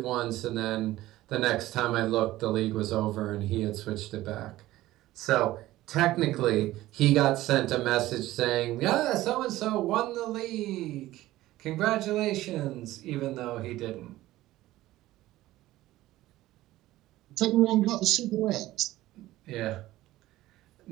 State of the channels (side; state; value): left; quieter; 16.1 dB